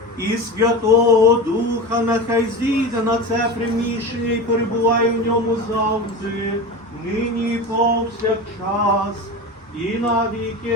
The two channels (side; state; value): both; normal; correlation 0.27